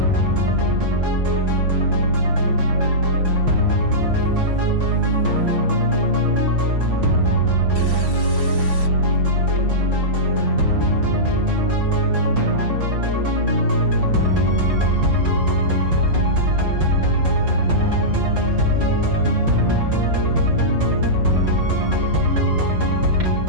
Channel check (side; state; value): left; late; 5.8 ms